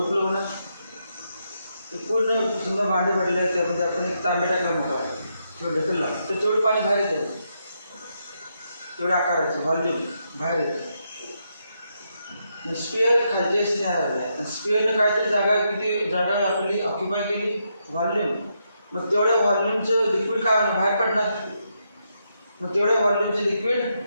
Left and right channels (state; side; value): inverted; both; correlation -0.80